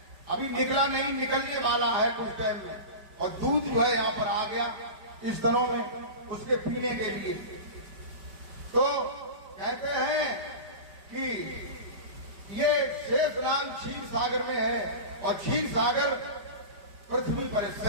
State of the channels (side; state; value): left; late; 5.1 ms